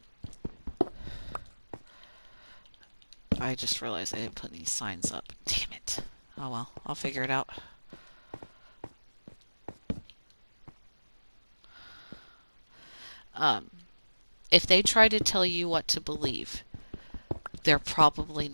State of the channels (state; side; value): inverted; both; correlation -1.00